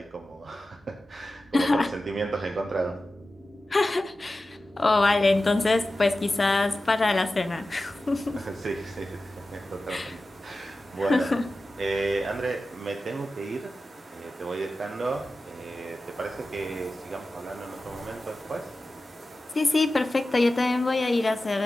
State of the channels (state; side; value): normal; both; correlation 0.94